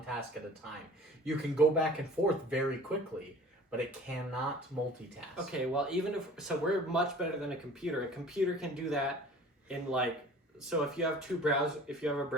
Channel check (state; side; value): normal; both; correlation 0.46